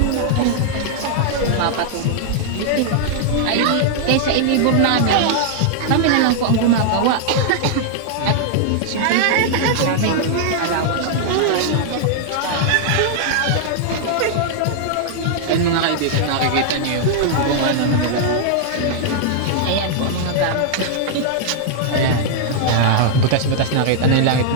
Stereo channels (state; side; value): different; both; correlation -0.01